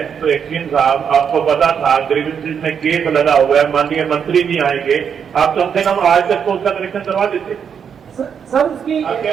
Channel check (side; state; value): left; quieter; 7.3 dB